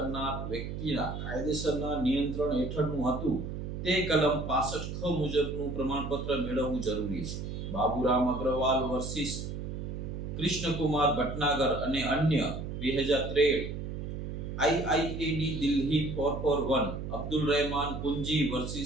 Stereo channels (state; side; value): noise; right; hum, 6 dB below the sound